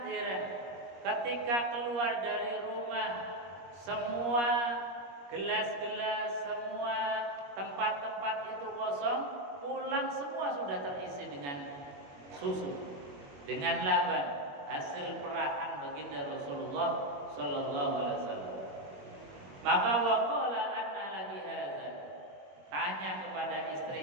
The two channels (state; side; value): late; left; 21 ms